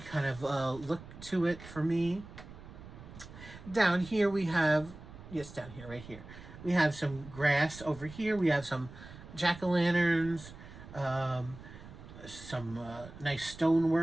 of look to it for me. Down here we have, yes, down here, right here, we have some grass over here. We have some jack-o'-lanterns, some nice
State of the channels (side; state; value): right; noise; rumble, 16 dB below the sound